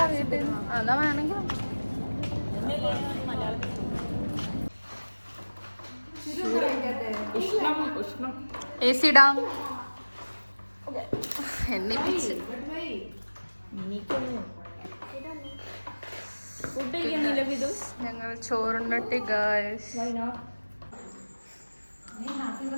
വീട്ടിൽ അതാ വേണമെങ്കിൽ AC ഇടാം. എണ്ണിപ്പിച്ച് ഞങ്ങൾ ചോറുണ്ടട്ടി guys.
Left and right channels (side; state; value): both; inverted; correlation -1.00